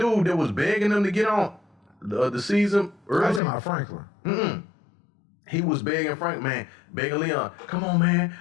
that was begging them to get on the season early. I was talking about Franklin. He was begging begging Leon, come on, man.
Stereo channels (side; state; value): right; drops out; at 3.4 s